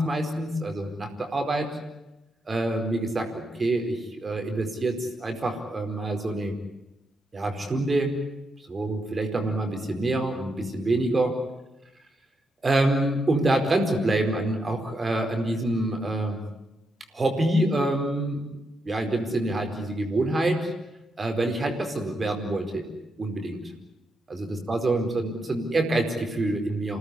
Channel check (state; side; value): normal; both; correlation 0.82